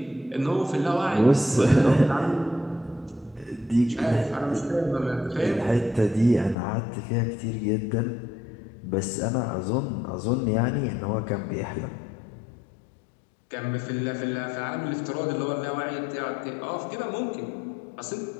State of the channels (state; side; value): drops out; right; at 6.6 s